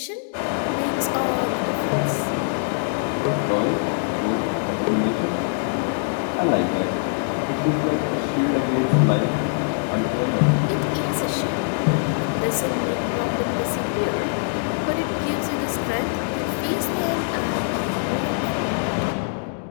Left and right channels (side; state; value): right; silent; digital silence